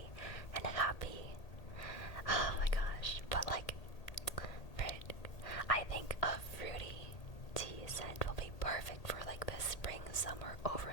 and happy. Oh my gosh, but like, I think a fruity tea scent will be perfect for like the spring-summer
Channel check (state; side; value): late; right; 1.8 ms